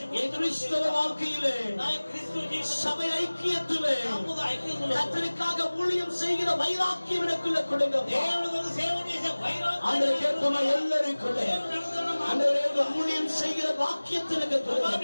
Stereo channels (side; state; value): both; inverted; correlation -1.00